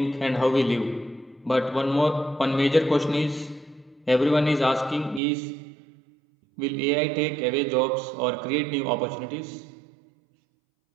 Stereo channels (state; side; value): drops out; left; at 5.2 s